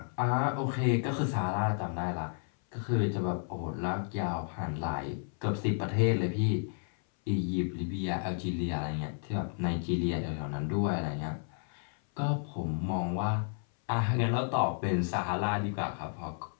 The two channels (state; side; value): silent; right; 56 dB below the other